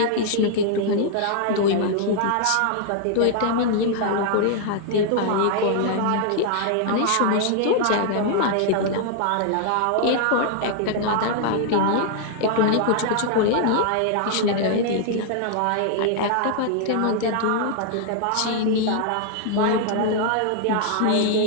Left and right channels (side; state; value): both; different; correlation -0.01